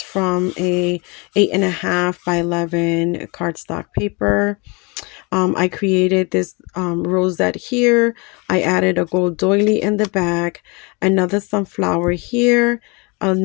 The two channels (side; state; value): right; quieter; 29.2 dB